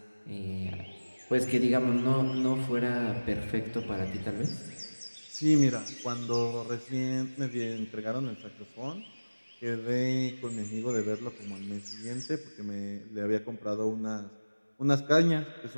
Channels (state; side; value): inverted; both; correlation -1.00